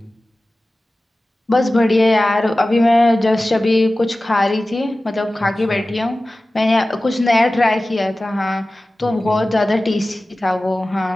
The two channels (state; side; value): normal; both; correlation 0.96